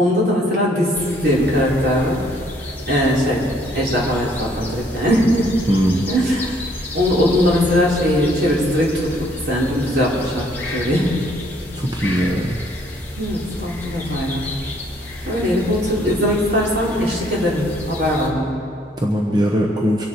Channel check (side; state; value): both; normal; correlation 0.65